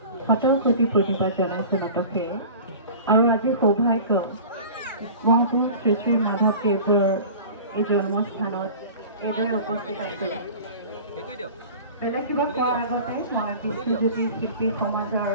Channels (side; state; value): both; inverted; correlation -0.39